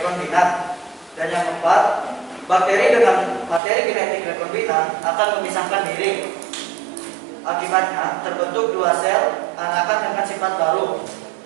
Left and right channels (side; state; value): left; drops out; at 3.6 s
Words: Dan yang keempat, bakteri dengan materi genetik rekombinan akan memisahkan diri. Akibatnya terbentuk dua sel anakan dengan sifat baru,